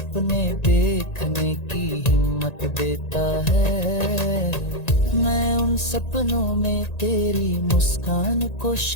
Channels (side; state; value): right; late; 1.9 ms